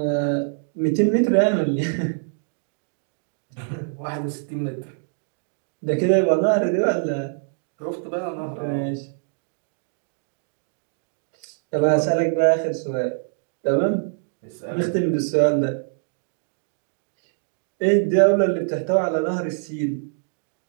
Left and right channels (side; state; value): left; silent; digital silence